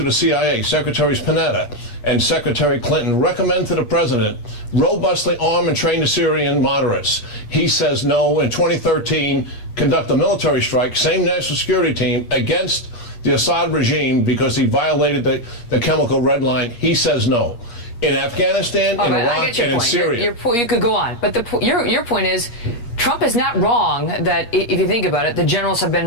of the CIA, Secretaries Panetta, and Secretary Clinton recommend to the president robustly arm and train the Syrian moderates. He says no. In 2013, conduct a military strike, same national security team, against the Assad regime because he violated the chemical red line. He says no. In Afghanistan, in Iraq, and in Syria. You could go on, but your point is, Trump is not wrong that, if you think about it, the generals have been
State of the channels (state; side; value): late; right; 8.5 ms